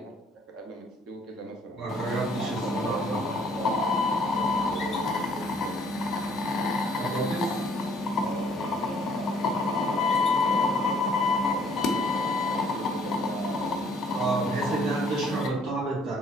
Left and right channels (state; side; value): normal; both; correlation 0.61